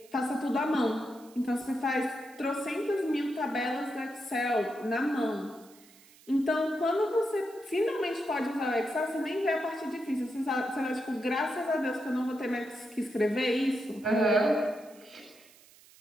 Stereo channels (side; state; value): right; noise; hiss, 25 dB below the sound